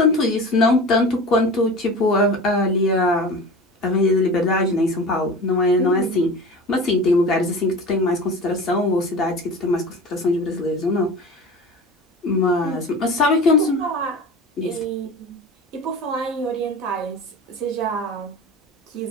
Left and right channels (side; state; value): both; normal; correlation 0.34